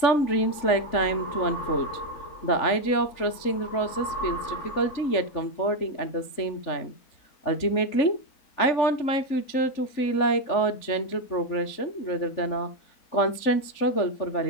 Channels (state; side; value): late; right; 3.5 ms